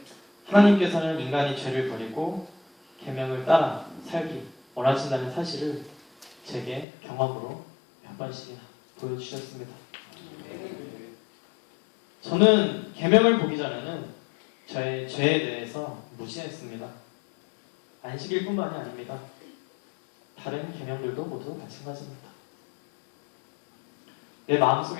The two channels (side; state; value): right; drops out; at 6.9 s